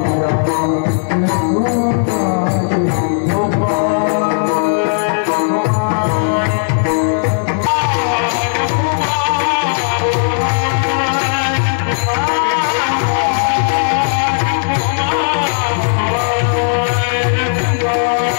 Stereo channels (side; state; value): right; silent; digital silence